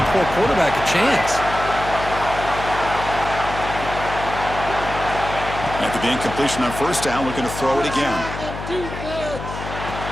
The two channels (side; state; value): left; noise; hum, 9 dB below the sound